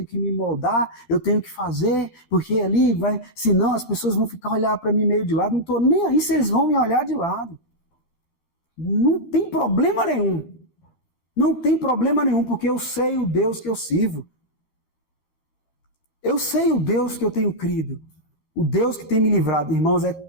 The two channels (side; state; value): right; late; 12 ms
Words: que me moldar, eu tenho que fazer, porque ali senão as pessoas vão ficar olhando para mim meio de lado, não estou nem aí se eles vão me olhar de lado. Não tem problema nenhum. Não tem problema nenhum, porque eu sei o Deus que eu sirvo. Eu sei o Deus que eu tenho crido. O Deus que tem me livrado. Irmãos, é